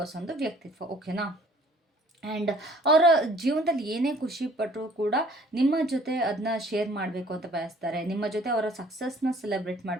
ವ್ಯಕ್ತಿತ್ವ. ಓಕೆನಾ? ಆ್ಯಂಡ್ ಅವರ ಜೀವನದಲ್ಲಿ ಏನೇ ಖುಷಿ ಪಟ್ಟರೂ ಕೂಡ ನಿಮ್ಮ ಜೊತೆ ಅದನ್ನ ಶೇರ್ ಮಾಡಬೇಕು ಅಂತ ಬಯಸ್ತಾರೆ, ನಿಮ್ಮ ಜೊತೆ ಅವರ ಸಕ್ಸಸ್ನ ಸೆಲೆಬ್ರೇಟ್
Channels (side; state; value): both; normal; correlation 0.55